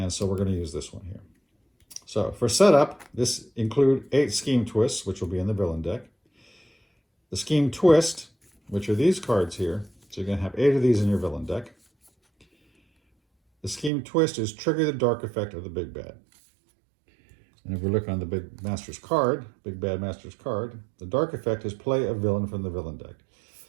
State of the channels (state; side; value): drops out; left; at 13.9 s